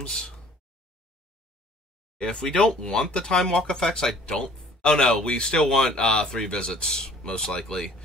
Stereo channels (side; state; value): both; normal; correlation 0.53